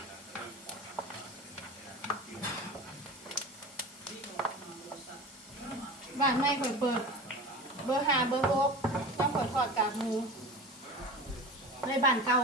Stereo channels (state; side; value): normal; both; correlation 0.33